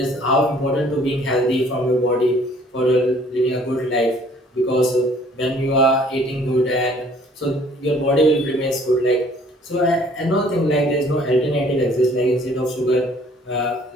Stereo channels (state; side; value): normal; both; correlation 0.57